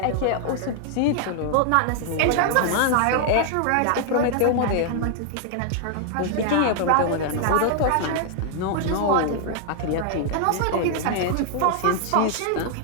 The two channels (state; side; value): different; both; correlation 0.00